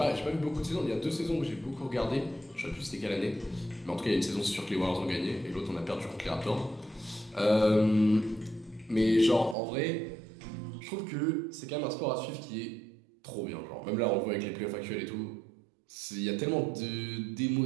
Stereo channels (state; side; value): drops out; left; at 9.6 s